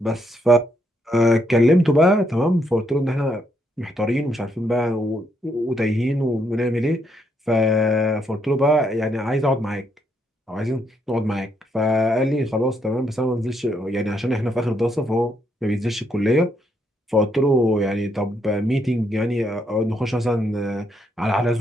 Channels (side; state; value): both; normal; correlation 0.75